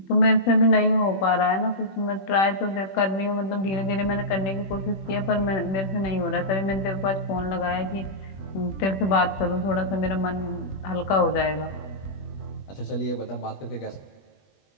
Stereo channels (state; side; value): late; right; 21 ms